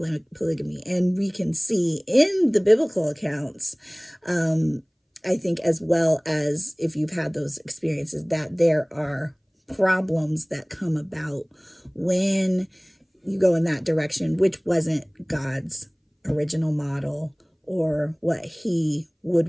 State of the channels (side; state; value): both; identical; correlation 1.00